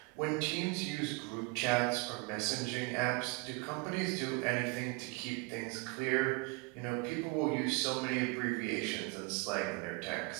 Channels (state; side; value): quieter; left; 28.3 dB